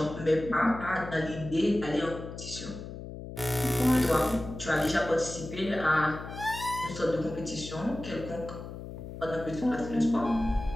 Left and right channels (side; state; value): left; noise; hum, 10 dB below the sound